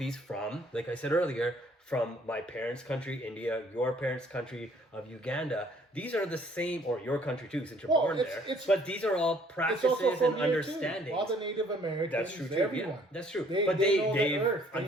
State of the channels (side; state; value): both; normal; correlation 0.60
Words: from, like I said earlier, from my parents' country, India, your parents' country of Uganda. These are the same, or your country too, since you're born there. But these are all practices and understandings. All the Native Americans, that's true too. Everyone. Yeah, that's true. They